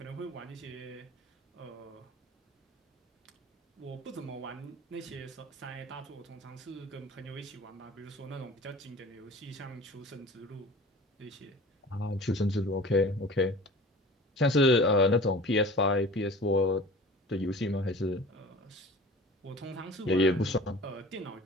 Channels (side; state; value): both; normal; correlation 0.41